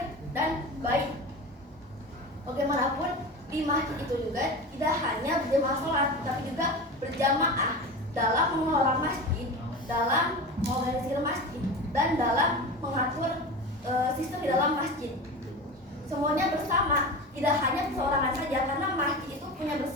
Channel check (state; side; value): normal; both; correlation 0.29